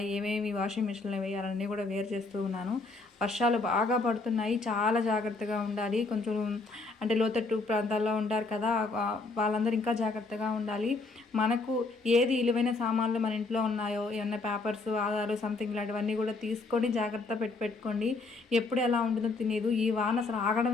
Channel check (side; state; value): right; quieter; 3.7 dB